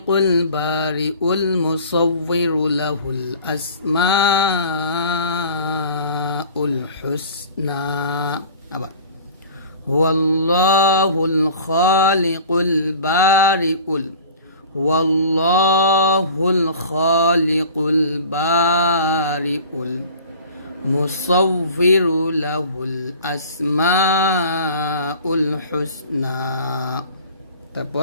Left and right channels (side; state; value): both; inverted; correlation -0.43